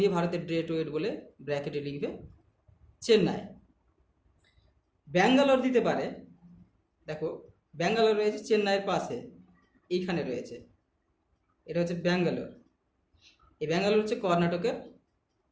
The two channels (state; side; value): identical; both; correlation 1.00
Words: ভারতের গ্রেট ওয়েট বলে ব্র্যাকেটে লিখবে চেন্নাই। ব্যাঙ্গালোর দিতে পারে। দেখো, ব্যাঙ্গালোর রয়েছে চেন্নাইয়ের পাশে, এইখানে রয়েছে, এটা হচ্ছে ব্যাঙ্গালোর। এই ব্যাঙ্গালোর হচ্ছে কর্ণাটকের